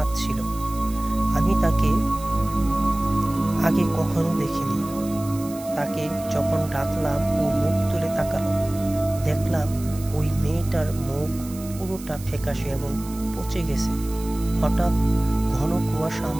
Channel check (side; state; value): right; noise; hiss, 17 dB below the sound